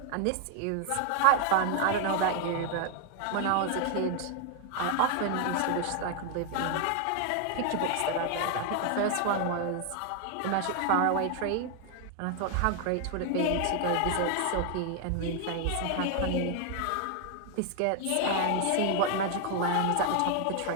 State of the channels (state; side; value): different; both; correlation 0.00